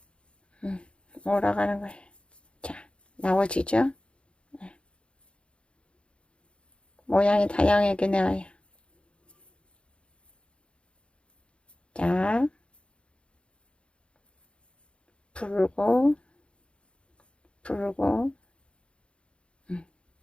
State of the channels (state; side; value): late; right; 0.057 ms